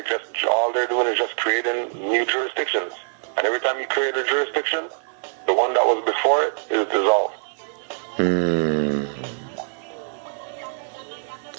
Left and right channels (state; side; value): silent; left; 63 dB below the other